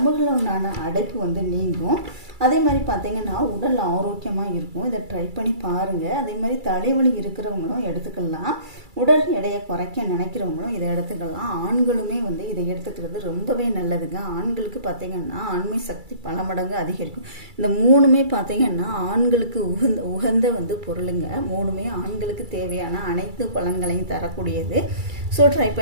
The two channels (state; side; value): late; left; 2.3 ms